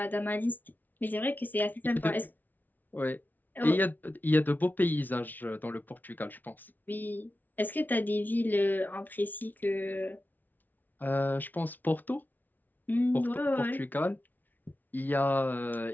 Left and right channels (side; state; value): right; late; 0.083 ms